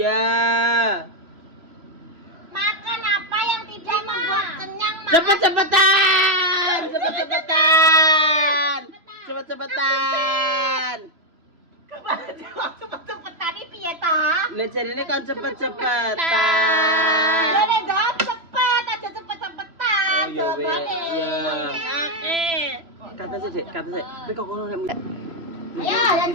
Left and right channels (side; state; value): left; late; 3.0 ms